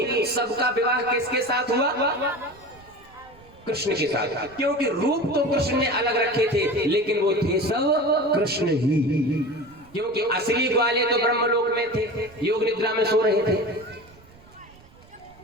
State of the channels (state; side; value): noise; right; rumble, 25 dB below the sound